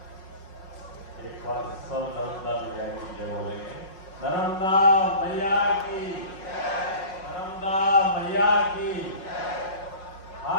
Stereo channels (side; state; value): right; late; 5.5 ms